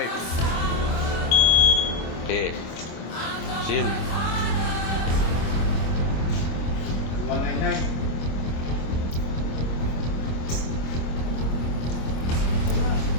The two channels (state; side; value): late; right; 26 ms